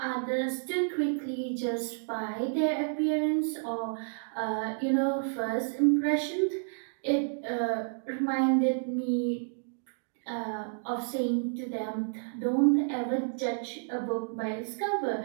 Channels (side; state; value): left; silent; digital silence